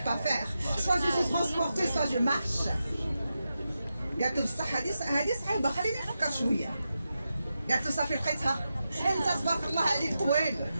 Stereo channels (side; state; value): both; inverted; correlation -0.89